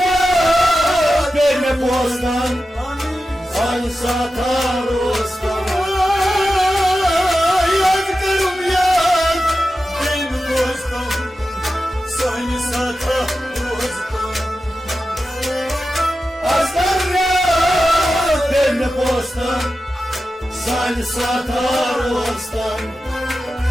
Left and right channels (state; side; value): normal; both; correlation 0.92